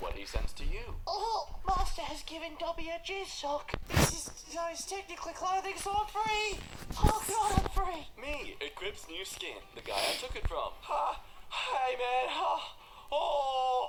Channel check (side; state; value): both; identical; correlation 1.00